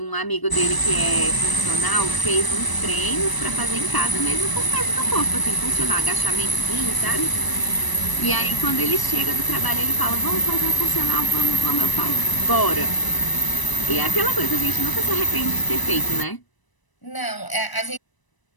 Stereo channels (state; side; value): late; right; 1.0 ms